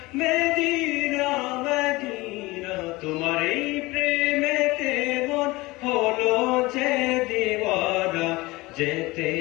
মদিনা তোমার এই প্রেমেতে মন হলো যে দিওয়ানা যেতে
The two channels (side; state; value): right; quieter; 21.5 dB